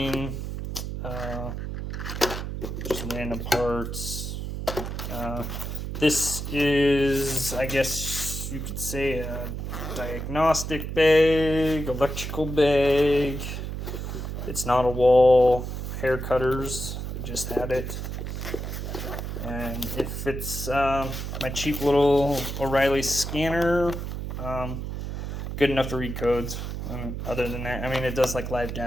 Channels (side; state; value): right; noise; hum, 5 dB below the sound